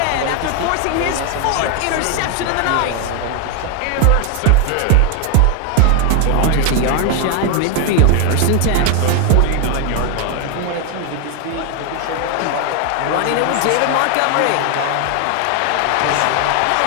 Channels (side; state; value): both; different; correlation 0.01